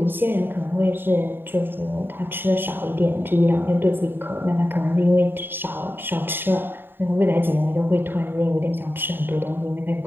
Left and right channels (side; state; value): left; late; 0.098 ms